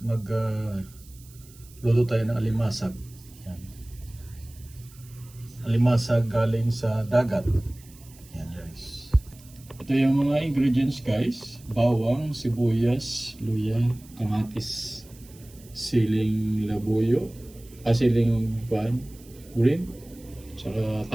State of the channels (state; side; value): noise; right; hiss, 24 dB below the sound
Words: luto tayo ng alimasag. Ayan. Alimasag galing sa dagat. Ayan guys. Ito yung mga ingredients guys. Bawang, sibuyas, luya, kamatis, siling labuyo, siling green, tsaka